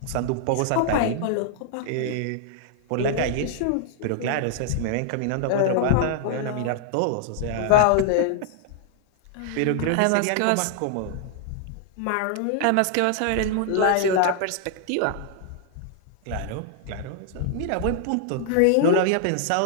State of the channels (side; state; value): both; different; correlation -0.01